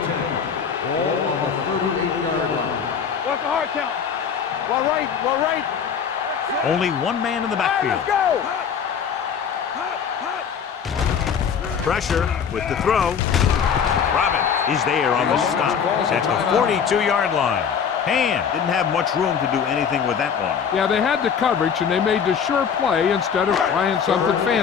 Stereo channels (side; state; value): right; quieter; 7.1 dB